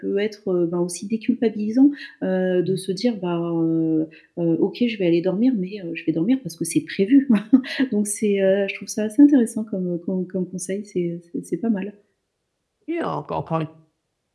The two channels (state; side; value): identical; both; correlation 1.00